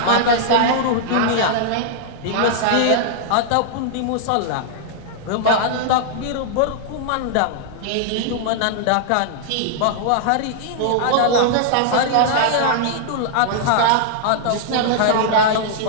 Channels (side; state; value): both; different; correlation -0.01